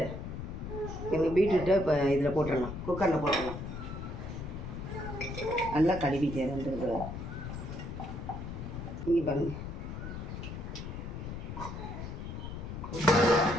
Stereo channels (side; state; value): left; noise; rumble, 7 dB below the sound